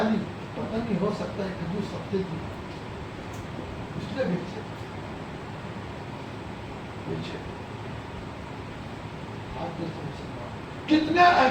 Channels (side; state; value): both; identical; correlation 1.00